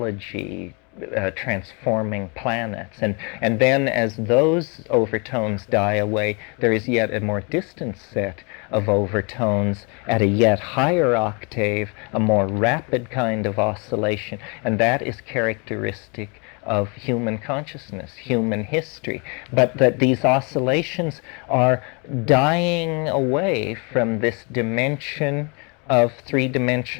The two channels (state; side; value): quieter; right; 32.5 dB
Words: transforming planets. And then as those overtones die away, there is yet a more distant set of overtones at a yet higher octave, a more rapid kind of oscillation, and that is characteristic of human consciousness, human history. But that these oscillations are dying away from this dimension of